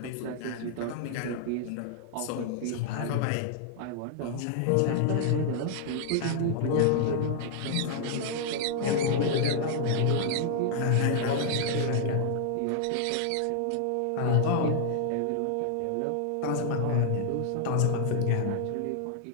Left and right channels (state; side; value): different; both; correlation -0.01